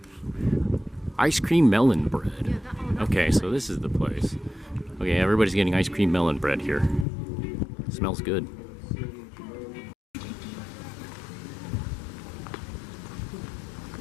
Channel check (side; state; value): right; drops out; at 7.1 s